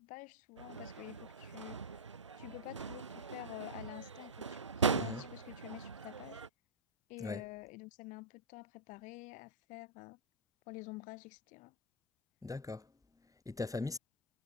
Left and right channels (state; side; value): normal; both; correlation -0.10